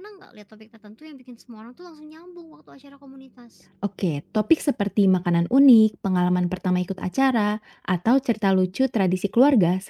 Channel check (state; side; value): identical; both; correlation 1.00